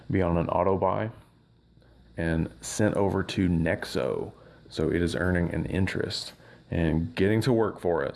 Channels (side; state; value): both; identical; correlation 1.00